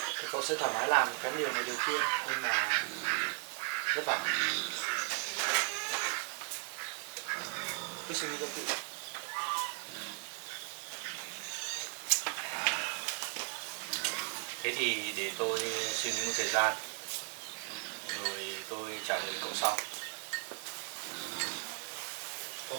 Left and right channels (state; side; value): quieter; left; 39.2 dB